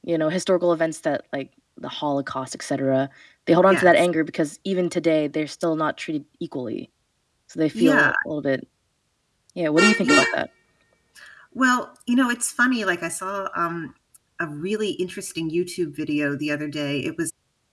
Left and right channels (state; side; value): identical; both; correlation 1.00